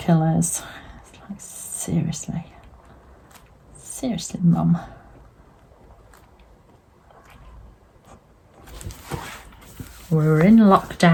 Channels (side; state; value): both; identical; correlation 1.00